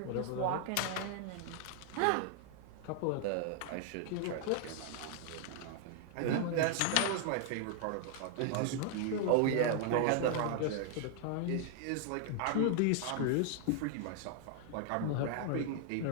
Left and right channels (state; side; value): different; both; correlation 0.00